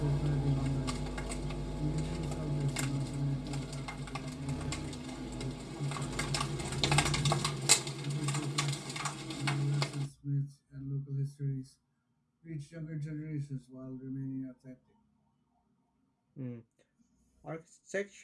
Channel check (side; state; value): both; identical; correlation 1.00